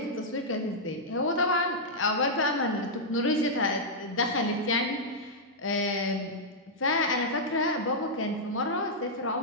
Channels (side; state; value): both; normal; correlation -0.07